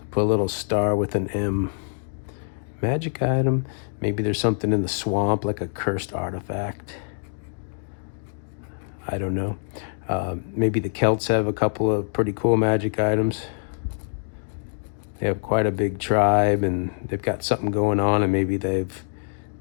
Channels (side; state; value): right; silent; digital silence